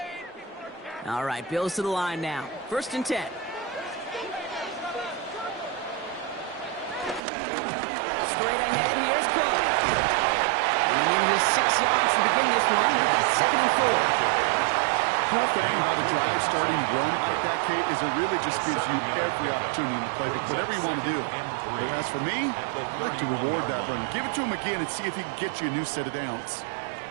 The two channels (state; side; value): drops out; left; at 7.2 s